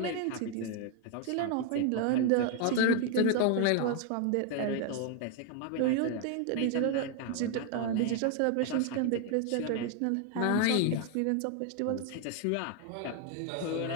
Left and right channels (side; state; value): both; different; correlation 0.01